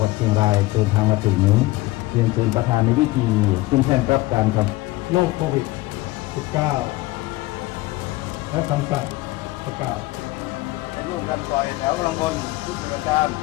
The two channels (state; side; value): quieter; right; 19.5 dB